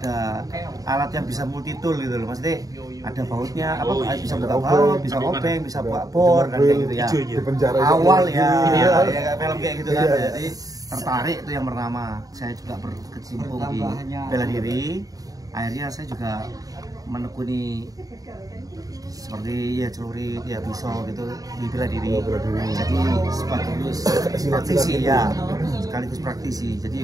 alat yang bisa multi tool gitu loh. Maksudnya ada bautnya, bisa buka baut, bisa obeng, bisa buka bor kan kayak gitu ya. Awal ya kayak film kayak gitu kan. Jadi tertarik itu yang pertama. Saya juga berkecimpung di bela diri. Akhirnya saya juga menekuni seperti ya celurit, ya pisau gitu di bela diri. Jadi sekaligus praktisi ya, sekaligus praktisi.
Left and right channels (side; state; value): left; late; 0.18 ms